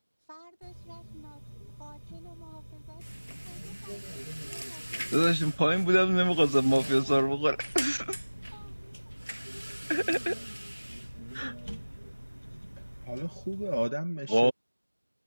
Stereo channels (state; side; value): inverted; both; correlation -1.00